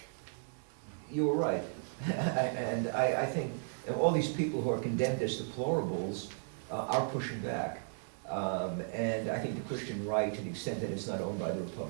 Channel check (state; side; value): silent; left; digital silence